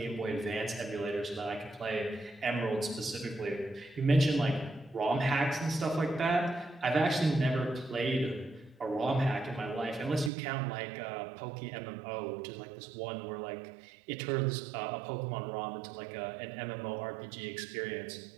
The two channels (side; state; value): left; drops out; at 10.3 s